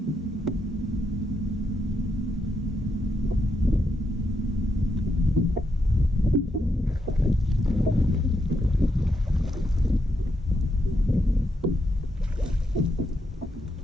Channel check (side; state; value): both; normal; correlation 0.81